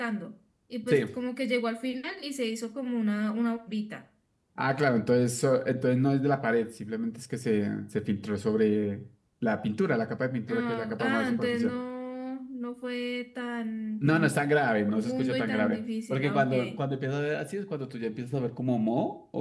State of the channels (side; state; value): both; identical; correlation 1.00